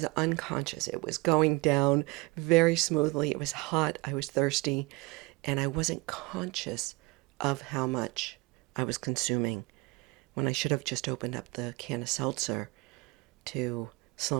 unconscious. It was going down very smoothly. It was hot. I was thirsty. And I wasn't conscious of how much I was consuming when I should have just opened up the can of seltzer to slow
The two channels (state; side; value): quieter; left; 24.6 dB